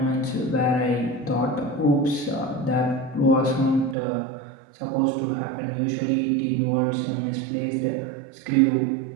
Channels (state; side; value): drops out; left; at 4.0 s